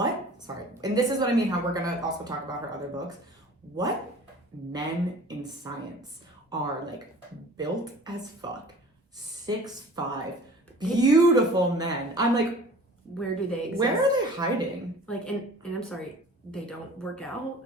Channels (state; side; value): normal; both; correlation 0.45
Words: and this is what I mean, how we're going to also talk about her other books. What men in science are, like, built as fuck, 6'5", beautiful men. I'm like, where do they exist? Where are they hiding? Like, and I'm sorry, they don't work out?